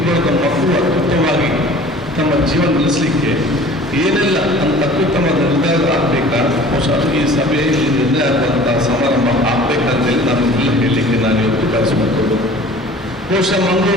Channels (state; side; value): normal; both; correlation 0.46